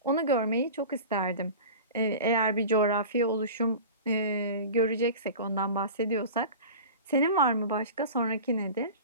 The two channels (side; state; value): both; inverted; correlation -0.35